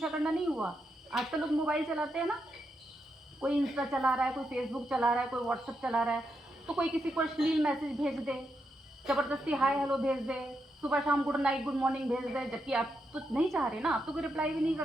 करना नहीं हुआ। आजकल लोग मोबाइल चलाते हैं ना, कोई इंस्टा चला रहा है, कोई फेसबुक चला रहा है, कोई व्हाट्सएप चला रहा है, तो कोई किसी को अश्लील मैसेज भेज दे, ज़बरदस्ती हाय हेलो भेज दे, सुबह शाम गुड नाइट गुड मॉर्निंग भेज दे, जबकि आप तो नहीं चाह रहे ना, आप तो कोई रिप्लाई भी नहीं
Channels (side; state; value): both; normal; correlation 0.83